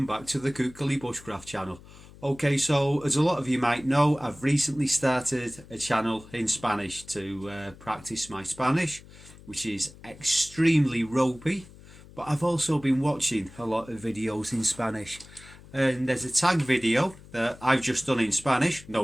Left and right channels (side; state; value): left; noise; hum, 20 dB below the sound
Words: back to the Kukali Bushcraft channel. Okay, so as a lot of you might know, I've recently started a channel in Spanish to practice my Spanish, which is extremely ropey, but I've also been watching a lot of videos in Spanish. And there's a tag video that I've just done in Spanish.